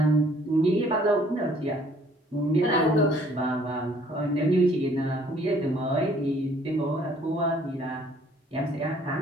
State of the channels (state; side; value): normal; both; correlation 0.59